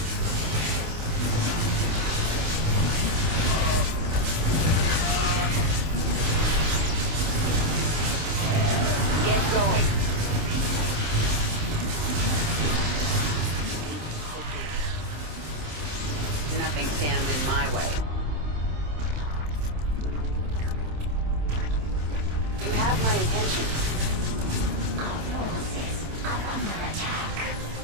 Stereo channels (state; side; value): late; left; 27 ms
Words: Get going. Nothing stands in my way. You have my attention. Our forces are under attack.